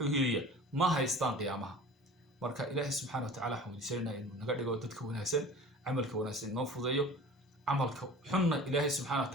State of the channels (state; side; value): normal; both; correlation 0.42